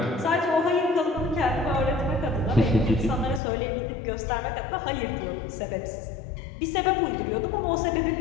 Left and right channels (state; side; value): drops out; right; at 3.4 s